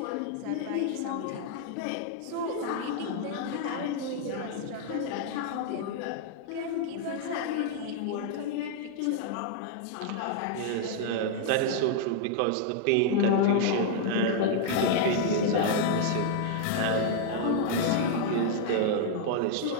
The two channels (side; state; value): both; different; correlation -0.01